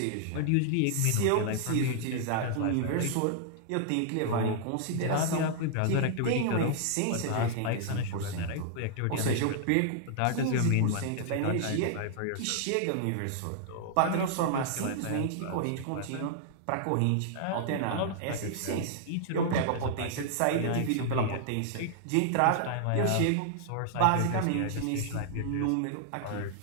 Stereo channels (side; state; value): both; different; correlation -0.01